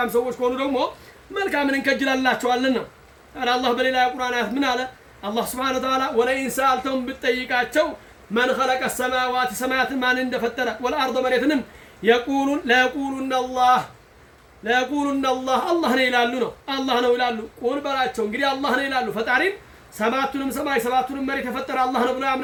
ሰዎች ከሆኑ ደግሞ መልካምን እንከጅላላቸዋለን ነው። አላህ በሌላ የቁርአን አያት ምን አለ? አላህ ሱብሓነሁ ወተዓላ ወለኢን ሰአልተሁም ብትጠይቃቸው መን ኸለቀ ሰማዋት ሰማያትን ማን እንደፈጠረ ወልአርض መሬትንም ለየቁሉነ አላህ አላህ ነው ይላሉ ነው። አላህ ነው ይላሉ። ቁል በላቸው እንግዲህ አላህ ነው ይላሉ። ፈጣሪም ሰባቱንም ሰማይ ሰባቱንም መሬት የፈጠረ አላህ ነው ብለው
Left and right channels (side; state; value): both; identical; correlation 1.00